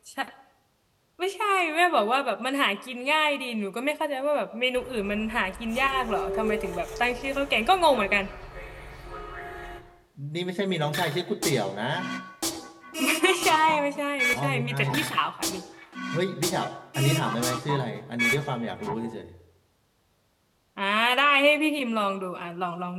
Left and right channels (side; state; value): both; identical; correlation 1.00